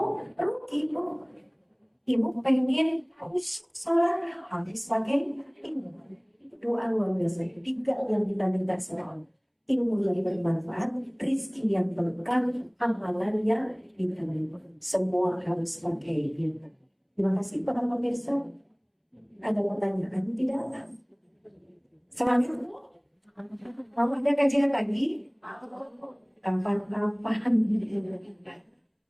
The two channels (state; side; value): identical; both; correlation 1.00